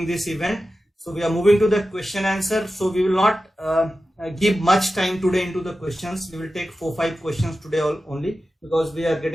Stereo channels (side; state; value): both; normal; correlation 0.93